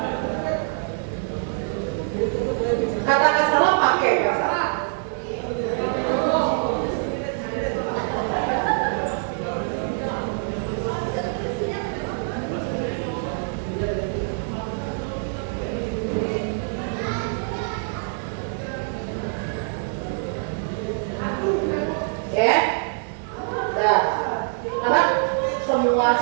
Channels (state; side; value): silent; left; 62 dB below the other